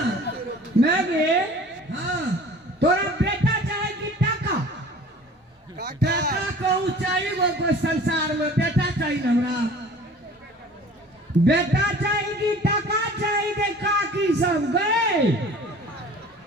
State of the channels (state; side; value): normal; both; correlation 0.46